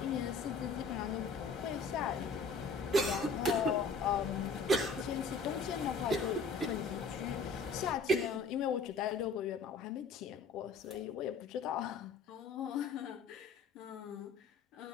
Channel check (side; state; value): right; quieter; 4.0 dB